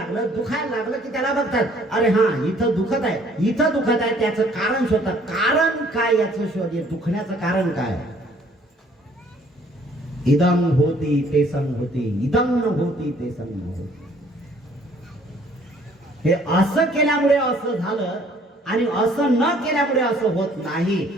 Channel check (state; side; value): normal; both; correlation 0.59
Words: दुखायला लागलं की त्याला बघतात, अरे हा इथं दुखत आहे, इथं दुखत आहे, त्याचं कारण शोधतात. कारण काय याचं शोध, दुखण्याचं कारण काय. इदं होती ते संग होती, इदं न होती ते संग होती. हे असं केल्यामुळे असं झालं आणि असं न केल्यामुळे असं होत नाही.